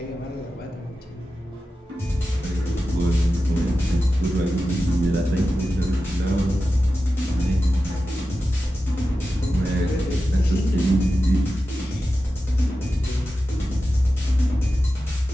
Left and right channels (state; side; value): normal; both; correlation 0.92